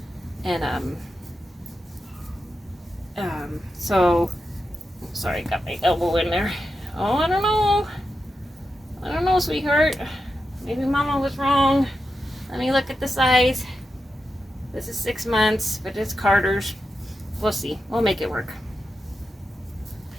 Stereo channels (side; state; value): both; normal; correlation 0.89